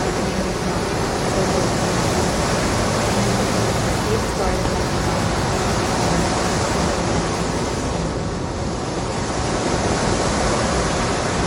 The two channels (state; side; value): identical; both; correlation 1.00